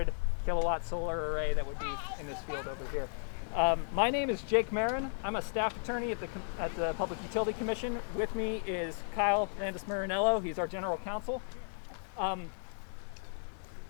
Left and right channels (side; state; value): right; silent; digital silence